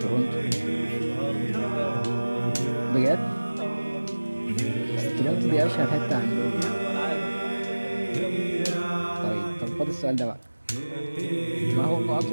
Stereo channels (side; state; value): both; inverted; correlation -1.00